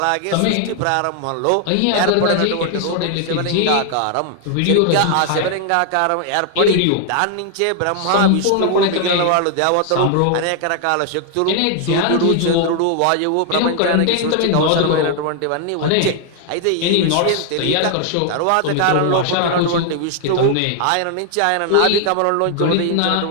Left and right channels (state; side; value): different; both; correlation 0.00